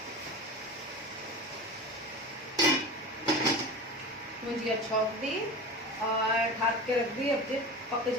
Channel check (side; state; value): both; normal; correlation 0.31